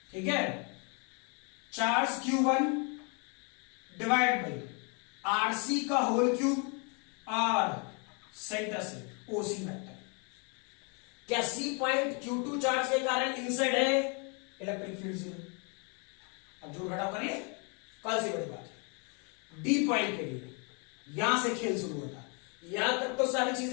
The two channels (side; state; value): right; quieter; 35.3 dB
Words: ठीक है, charge Q1 divide by RC का होल क्यूब और सेंटर से ओसी वेक्टर। क्या सी पॉइंट Q2 चार्ज के कारण इनसाइड है? Electric field 0। अब जोड़ घटाव कर लिए, कल से बड़ी बात है। डी पॉइंट के लिए यहां से खेल शुरू होता है। यहां तक तो सारी